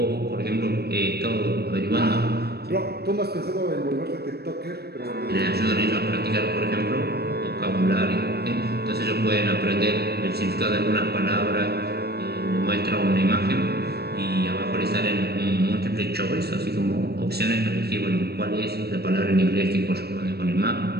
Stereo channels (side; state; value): left; late; 0.47 ms